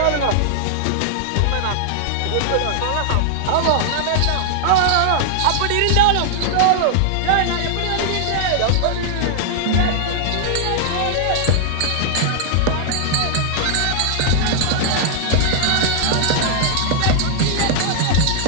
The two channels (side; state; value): both; different; correlation -0.01